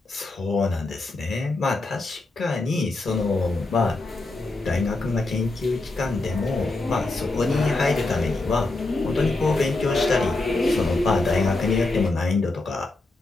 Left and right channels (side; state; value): right; quieter; 3.1 dB